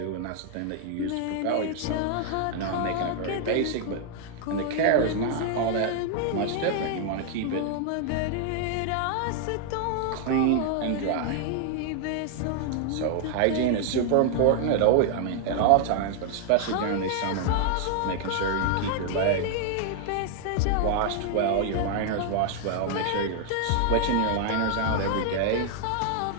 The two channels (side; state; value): both; different; correlation 0.00